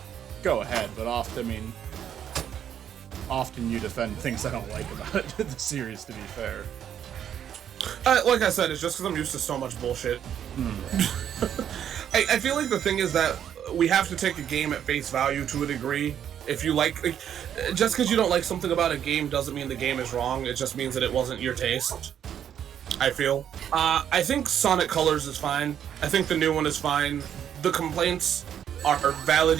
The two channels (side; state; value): left; quieter; 9.4 dB